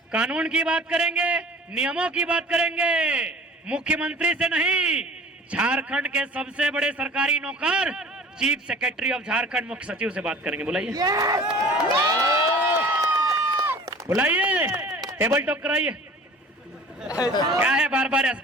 कानून की बात करेंगे, नियमों की बात करेंगे, मुख्यमंत्री से नहीं। झारखंड के सबसे बड़े सरकारी नौकर चीफ सेक्रेटरी ऑफ झारखंड मुख्य सचिव से बात करेंगे। बुलाइए, बुलाइए, टेबल टॉक कराइए। क्या है बार बार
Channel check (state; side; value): normal; both; correlation 0.44